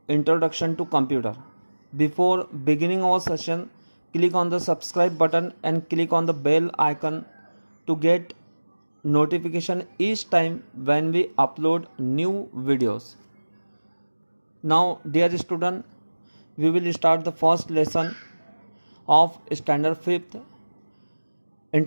Introduction to Computer. Before beginning our session, click on the subscribe button and click on the bell icon to get notification each time when we upload new videos. Now dear student, we will start the first lesson of standard 5th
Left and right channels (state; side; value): inverted; both; correlation -1.00